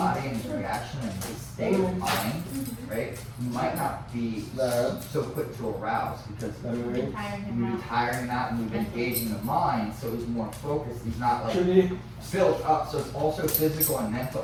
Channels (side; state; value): both; identical; correlation 1.00